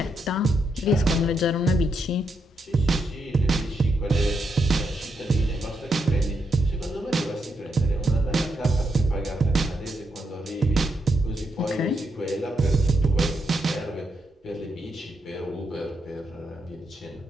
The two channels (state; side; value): normal; both; correlation 0.81